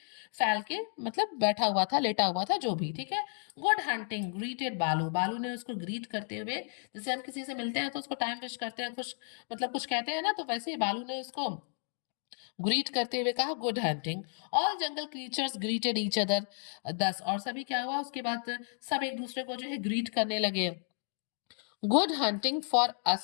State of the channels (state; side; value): silent; right; 56 dB below the other